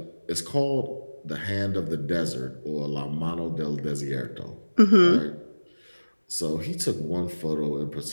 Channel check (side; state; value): both; inverted; correlation -1.00